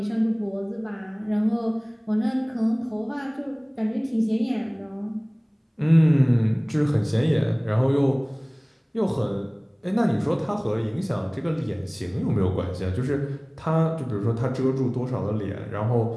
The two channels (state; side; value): identical; both; correlation 1.00